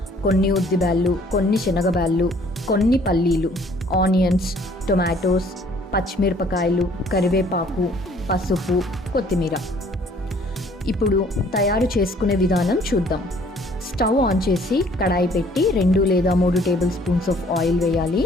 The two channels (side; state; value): both; normal; correlation 0.58